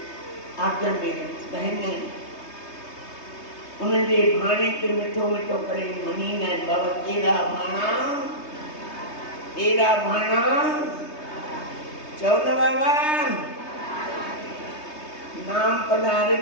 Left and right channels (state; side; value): late; right; 3.2 ms